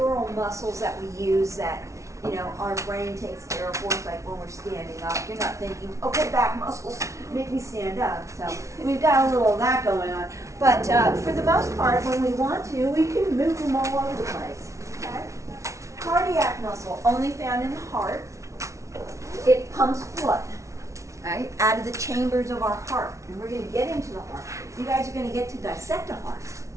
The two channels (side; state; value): left; late; 0.14 ms